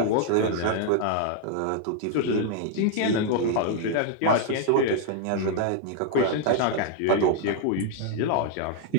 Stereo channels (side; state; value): both; different; correlation 0.00